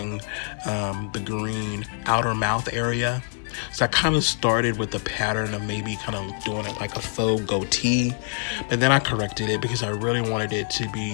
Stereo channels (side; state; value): right; silent; 59 dB below the other